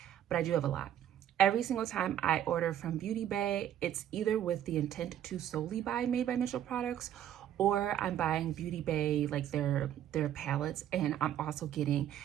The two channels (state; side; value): quieter; left; 10.9 dB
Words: but I do have a lot. Every single time I order from Beauty Bay, it's either with the intent to solely buy Made by Mitchell products, or I'm buying Beauty Bay, like their palettes, and I'm also getting